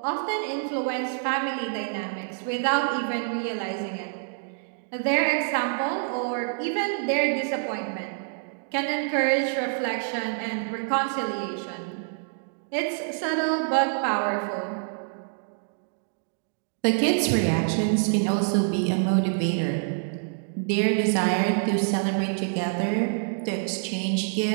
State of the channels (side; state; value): left; silent; digital silence